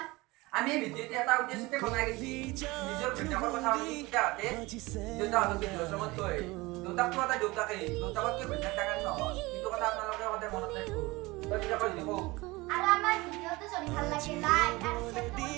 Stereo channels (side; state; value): left; quieter; 22.2 dB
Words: আমি ভিডিঅ'টি এটা উদ্দেশ্যতে বনাই গৈছি নিজৰ ঘৈণীয়েকৰ কথা পাতি দেউতাহঁতে দেউতাহঁতক বৃদ্ধাশ্ৰমত থৈ দেউতাকটো এটা দেউতাকেই দেউতাকতকৈ ঘৈণীয়েক ডাঙৰ নহয় কিন্তু কথা আপোনালোকে সদায় মনত ৰাখিব দেউতাকৰ দেখো আৰু আমাৰ ভিডিঅ'টো যদি ভাল লাগে লাইক আৰু শেয়াৰ